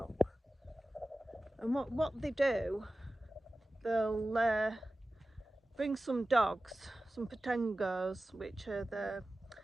and what they do, they'll bring some dogs, some patengos, which are the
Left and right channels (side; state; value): both; normal; correlation 0.96